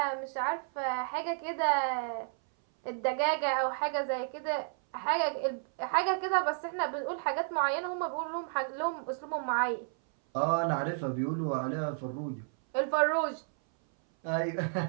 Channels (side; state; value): left; silent; 57 dB below the other